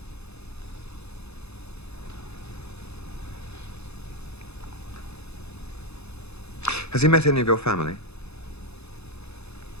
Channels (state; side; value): late; right; 0.79 ms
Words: Has he met any of your family?